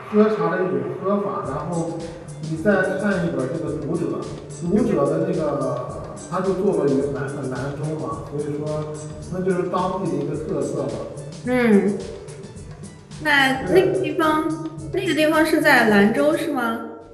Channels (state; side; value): identical; both; correlation 1.00